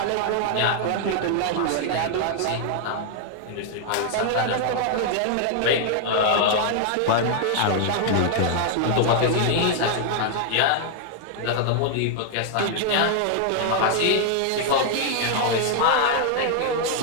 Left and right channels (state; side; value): different; both; correlation 0.00